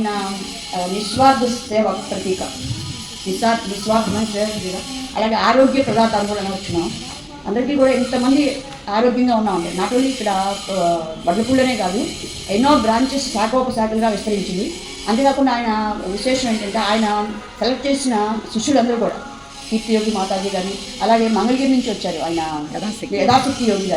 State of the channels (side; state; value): both; identical; correlation 1.00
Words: నిస్వార్థ సేవ ప్రతీక, నిస్వార్థమైన సేవ ప్రతీక. అలాగే ఆరోగ్య పదార్థాలు కూడా వచ్చినాం. అందరికీ కూడా ఇంతమంది ఆరోగ్యంగా ఉన్నామండి. నాట్ ఓన్లీ ఇక్కడ వడ్లపూళ్ళనే కాదు, ఎన్నో బ్రాంచెస్ శాఖోపశాఖలుగా విస్తరించింది. అంతేకాకుండా ఆయన విశేషం ఏంటంటే ఆయన సెలెక్ట్ చేసిన శిష్యులందరూ కూడా కీర్తి యోగి మాతాజీ కానీ, అలాగే మంగళగిరి నుంచి వచ్చారు ఆయన యథాశక్తి యోగి